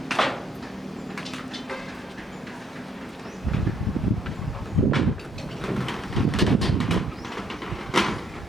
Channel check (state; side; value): normal; both; correlation 0.69